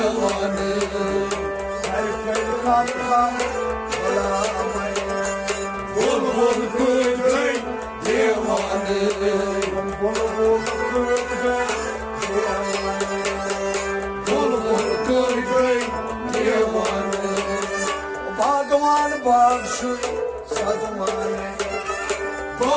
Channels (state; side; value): identical; both; correlation 1.00